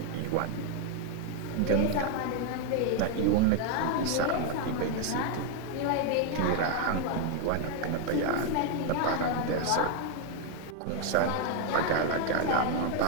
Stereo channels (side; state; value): both; different; correlation 0.01